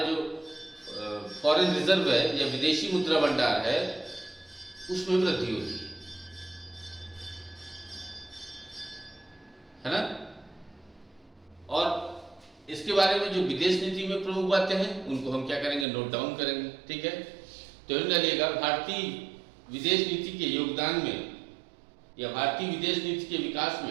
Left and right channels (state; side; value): drops out; left; at 15.9 s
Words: जो फॉरेन रिजर्व है या विदेशी मुद्रा भंडार है उसमें वृद्धि होती है ना। और इसके बारे में जो विदेश नीति में प्रमुख बातें हैं उनको हम क्या करेंगे, नोट डाउन करेंगे, ठीक है। तो डालिएगा भारतीय विदेश नीति के योगदान में या भारतीय विदेश नीति के विकास